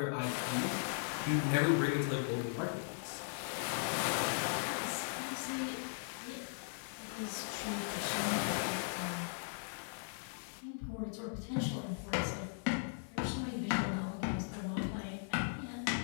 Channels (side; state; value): right; silent; 52 dB below the other